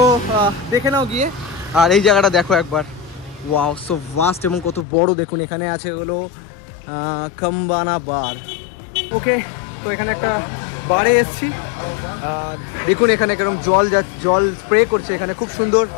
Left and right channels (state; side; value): drops out; right; at 4.9 s